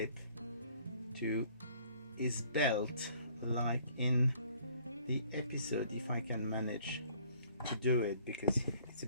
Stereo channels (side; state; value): both; inverted; correlation -0.58